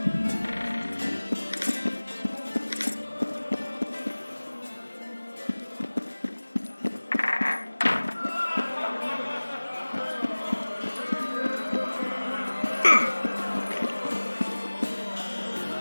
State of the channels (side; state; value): both; inverted; correlation -1.00